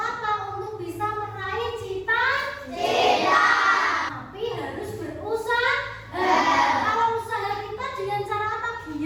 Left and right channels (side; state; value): both; identical; correlation 1.00